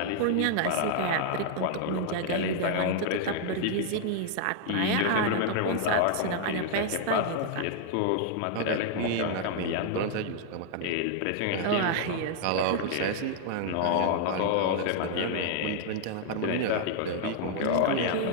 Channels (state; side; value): different; both; correlation -0.01